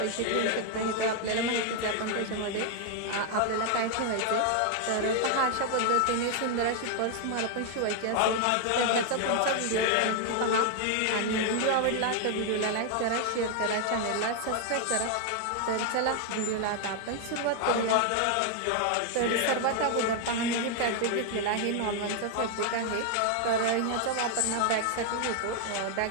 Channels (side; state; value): both; different; correlation 0.00